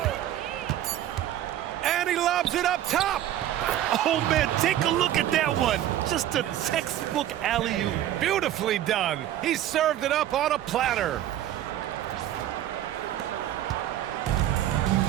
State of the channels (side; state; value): left; quieter; 12.3 dB